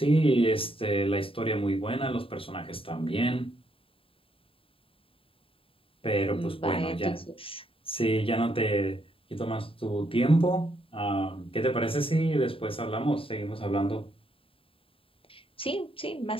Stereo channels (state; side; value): late; right; 0.27 ms